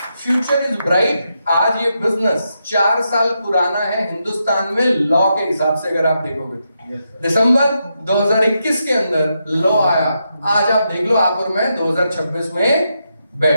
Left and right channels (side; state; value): both; inverted; correlation -0.83